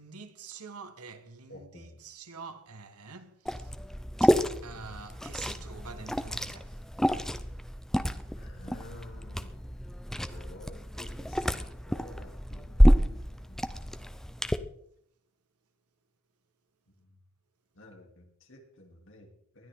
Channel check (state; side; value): normal; both; correlation 0.97